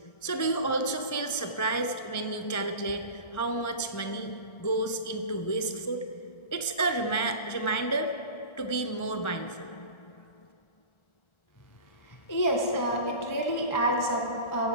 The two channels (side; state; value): right; late; 1.4 ms